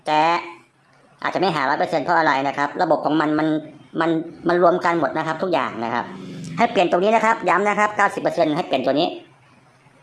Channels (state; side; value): identical; both; correlation 1.00